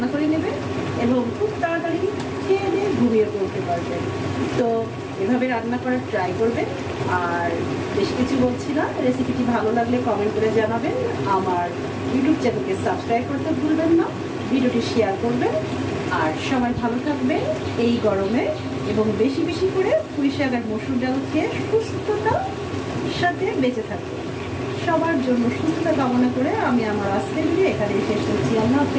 করে নেবেন এবং খুব তাড়াতাড়ি খেয়ে দিয়ে ঘুমিয়ে পড়তে পারবেন। তো এভাবে রান্না করার ট্রাই করবেন। আর বেশি কিছু বলছি না, রেসিপিটি ভালো লাগলে কমেন্ট করে জানাবেন, আমার ইউটিউব চ্যানেলকে সাবস্ক্রাইব করতে ভুলবেন না, ভিডিওটি শেয়ার করবেন। আর সবাই ভালো থাকবেন এই গরমে, এবং বেশি বেশি করে পুঁই শাক আর মসুর ডাল খেয়ে সুস্থতার সাথে বেঁচে থাকবেন। সবার জন্য সুস্থতা কামনা করে আমি আমার আজকের ভিডিও এখানে শেষ করছি। আল্লাহ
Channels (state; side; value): identical; both; correlation 1.00